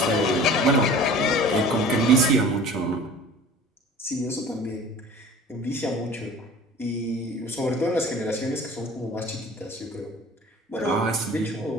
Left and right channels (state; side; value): normal; both; correlation 0.44